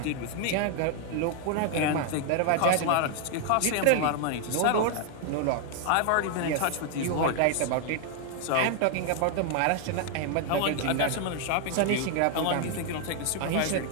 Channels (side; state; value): both; different; correlation 0.00